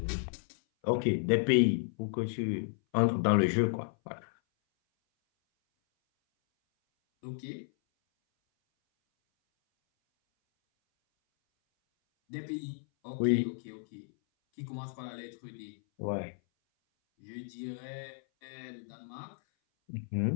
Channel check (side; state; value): right; silent; 56 dB below the other